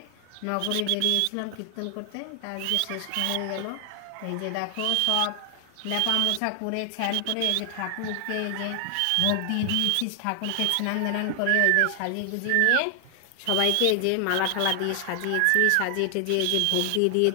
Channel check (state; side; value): different; both; correlation 0.00